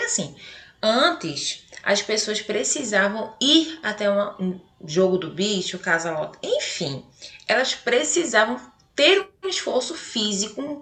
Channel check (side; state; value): both; identical; correlation 1.00